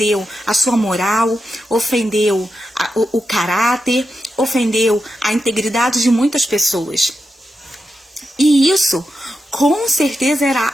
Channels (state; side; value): normal; both; correlation 0.88